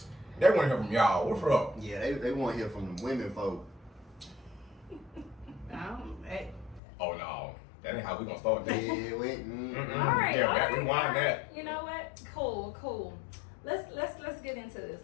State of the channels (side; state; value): right; drops out; at 6.8 s